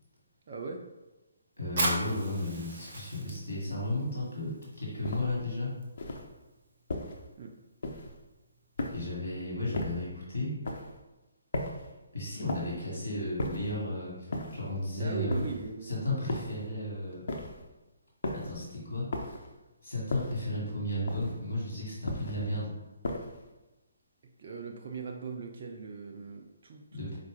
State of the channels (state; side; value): inverted; both; correlation -0.64